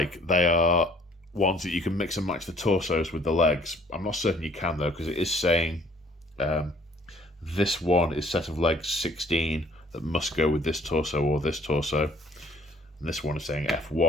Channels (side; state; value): both; normal; correlation 0.58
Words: they are ones that you can mix and match the torsos with the legs. I'm not certain you can though, because it is saying this one is set of legs 16 that must go with this torso or this torso. And this one is saying